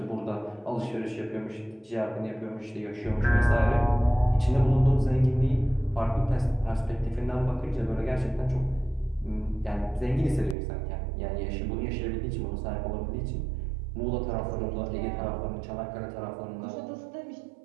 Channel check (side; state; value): left; drops out; at 10.6 s